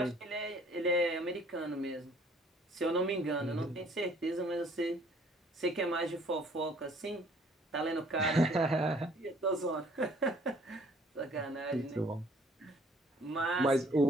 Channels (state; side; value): normal; both; correlation 0.58